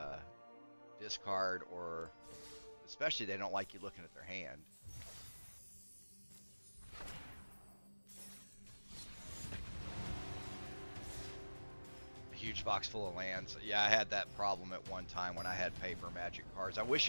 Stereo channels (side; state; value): both; inverted; correlation -1.00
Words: discard, or especially they don't like you looking at their hand. Huge box full of lands. Yeah, I had that problem at one time when I had paper Magic cards. I